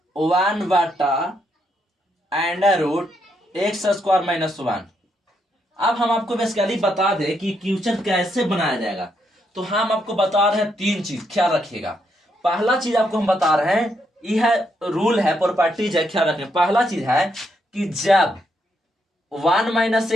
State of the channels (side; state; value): both; normal; correlation 0.77